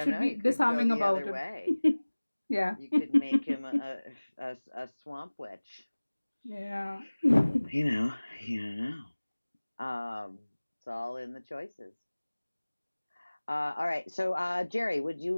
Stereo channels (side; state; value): both; inverted; correlation -1.00